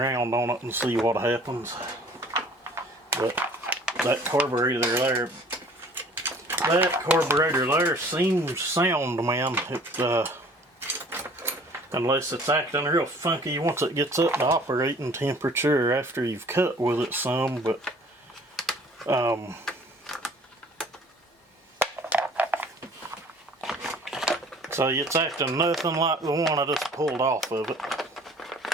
on it and see what happens. But that carburetor there, seems sound, man. It, unless it's acting real funky once it gets up to operating temperature after you've cut with it some. But so it's acting nothing like the one I just pulled off of it,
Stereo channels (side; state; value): both; normal; correlation 0.51